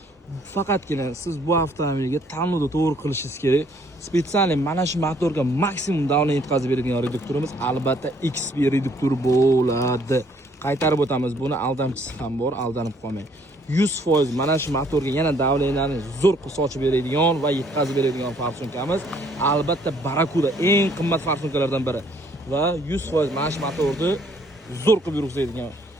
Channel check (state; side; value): normal; both; correlation 0.63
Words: Faqatgina siz bu avtomobilga tanlovda to'g'ri qilishingiz kerak. Spesial mana shu motorga maksimum davlat yetkazib beradigan reduktorimiz albatta XP reduktor bo'ladi. Qaytarib o'tamiz, buni aldamchisi ham bor, aldanib qolmang. 100% mana shu motorga yana davlatlarni zo'r qilib sochib beradigan va yetkazib beradigan farsunkamiz albatta Barakuda, eng qimmat farsunkalardan biri. Va 100% mana shu motorni zo'r qilib yurgizadigan